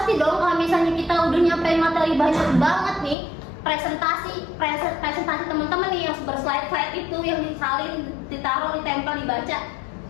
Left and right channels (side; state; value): right; drops out; at 3.2 s